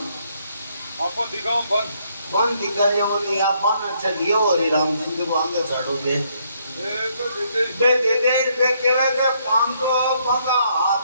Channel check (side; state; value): both; inverted; correlation -0.71